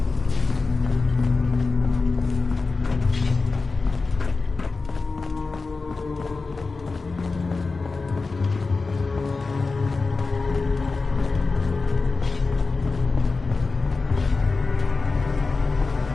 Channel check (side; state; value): right; quieter; 4.0 dB